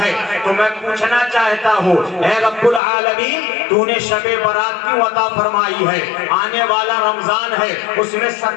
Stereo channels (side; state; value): right; drops out; at 2.8 s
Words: تو میں پوچھنا چاہتا ہوں اے رب العالمین، تو نے شب برات کیوں عطا فرمائی ہے؟ آنے والا رمضان ہے، اس میں